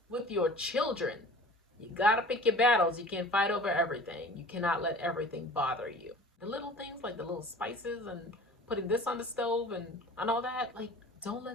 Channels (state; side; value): normal; both; correlation 0.44